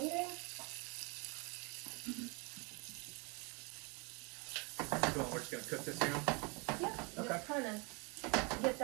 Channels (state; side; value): quieter; left; 31.2 dB